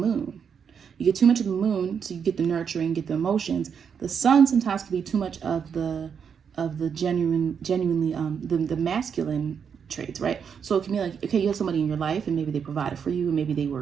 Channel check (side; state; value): left; quieter; 7.0 dB